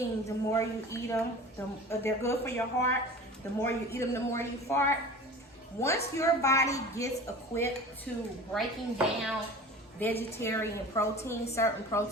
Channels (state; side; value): normal; both; correlation 0.38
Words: the more you eat them, they're good for your heart. The more you eat them, the more you fart. Once your body gets equipped to breaking down vegetarian protein, certain